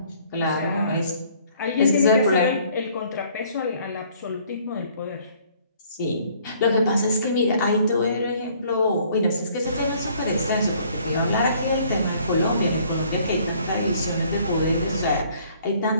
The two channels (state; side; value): inverted; both; correlation -0.59